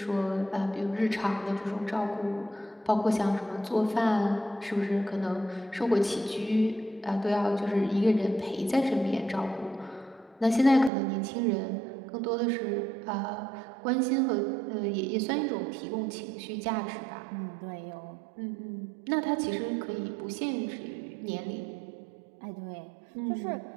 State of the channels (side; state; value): left; drops out; at 10.9 s